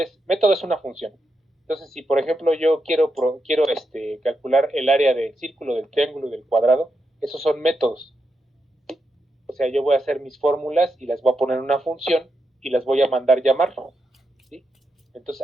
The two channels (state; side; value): normal; both; correlation 0.84